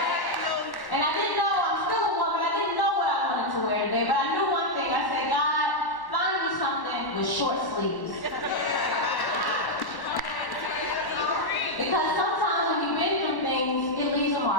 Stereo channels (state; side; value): late; right; 1.1 ms